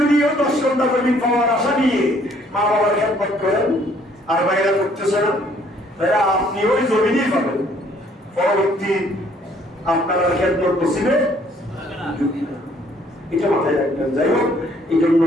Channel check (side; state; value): both; normal; correlation 0.62